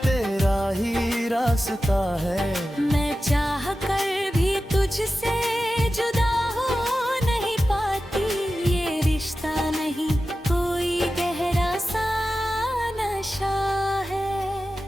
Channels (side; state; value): both; normal; correlation 0.93